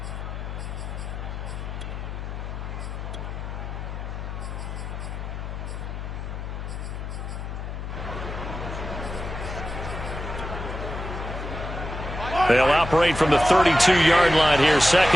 They'll operate from the 32-yard line here,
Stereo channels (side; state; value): left; noise; hum, 6 dB below the sound